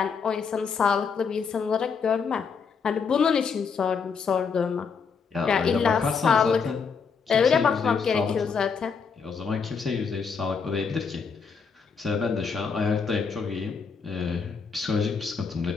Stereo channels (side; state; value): right; quieter; 5.7 dB